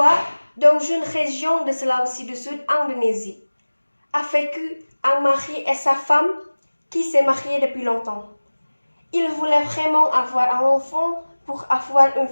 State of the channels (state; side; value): inverted; both; correlation -1.00